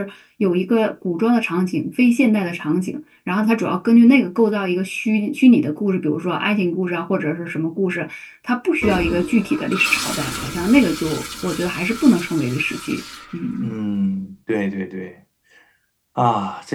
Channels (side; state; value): both; identical; correlation 1.00